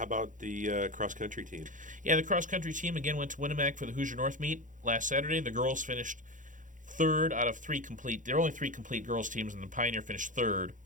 about the cross-country team? Yeah, the cross-country team again went to Winnemac for the Hoosier North meet last Saturday. The girls finished third out of three complete. There are only three complete girls teams, and the Pioneer finished third.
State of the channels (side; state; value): left; late; 0.37 ms